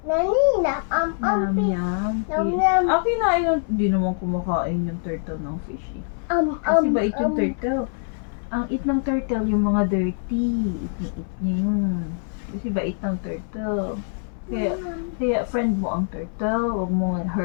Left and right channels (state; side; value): silent; right; 63 dB below the other